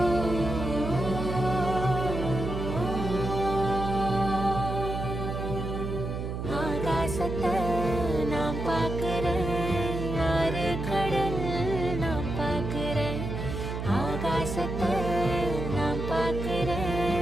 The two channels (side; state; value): right; noise; hum, 4 dB below the sound